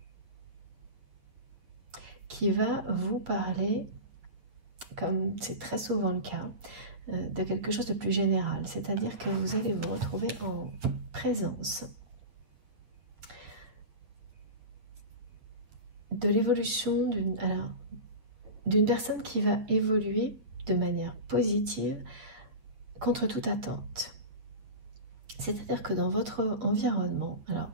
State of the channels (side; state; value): left; late; 8.8 ms